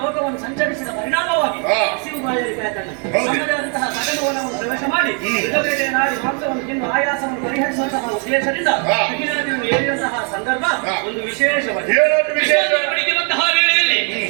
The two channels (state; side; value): quieter; left; 39.3 dB